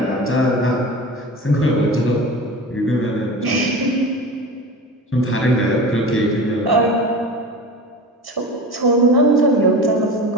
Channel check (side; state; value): both; normal; correlation 0.32